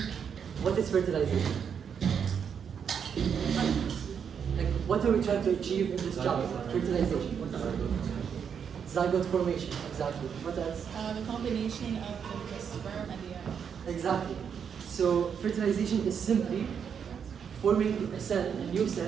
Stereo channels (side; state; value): left; quieter; 7.3 dB